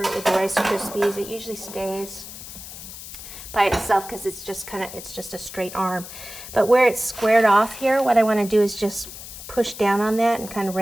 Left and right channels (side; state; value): left; noise; hiss, 13 dB below the sound